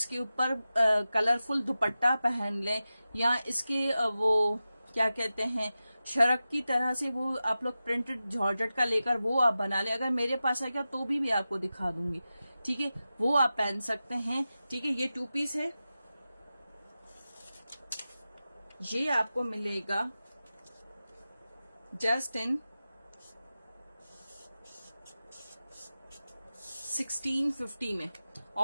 ऊपर कलरफुल दुपट्टा पहन लें, या इसके वो क्या कहते हैं शरक की तरह से वो आप लोग प्रिंटेड जॉर्जेट का लेकर वो आप बना लें। अगर मेरे पास आएगा तो भी आपको दिखा दूंगी, ठीक है। वो आप पहन सकते हैं, ठीक है। ये 2 पीस है। ये आपको मिलेगा जस्ट इन 1650 में।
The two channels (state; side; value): inverted; both; correlation -0.94